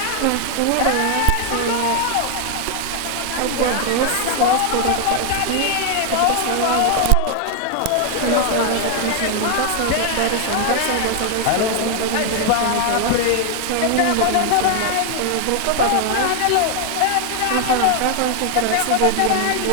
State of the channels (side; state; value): both; different; correlation 0.00